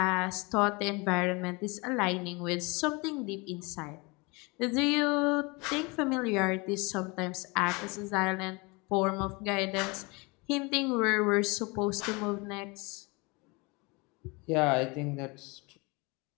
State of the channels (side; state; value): right; quieter; 27.3 dB